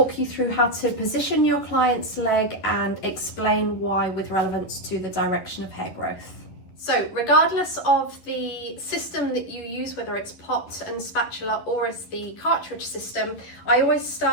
you through how to position your client's leg and explain why with relevance to the direction of hair growth. So regardless of the system that you use, whether it's pot and spatula or it's the cartridge system, I always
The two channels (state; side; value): late; right; 11 ms